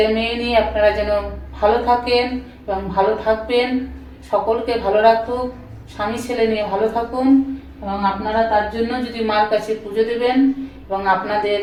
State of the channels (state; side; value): identical; both; correlation 1.00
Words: মেয়ে নিয়ে আপনারা যেন ভালো থাকেন এবং ভালো থাকবেন, সকলকে ভালো রাখুক, স্বামী ছেলে নিয়ে ভালো থাকুন। এবং আপনারা তার জন্য যদি মার কাছে পুজো দেবেন এবং আপনাদের